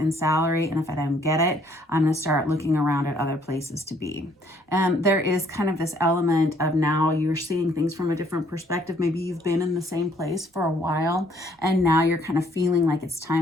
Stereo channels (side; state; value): both; normal; correlation 0.64